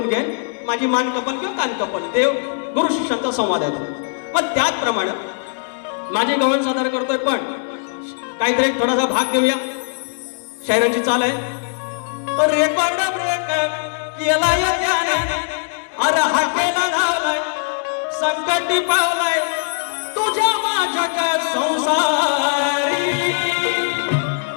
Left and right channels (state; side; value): silent; right; 66 dB below the other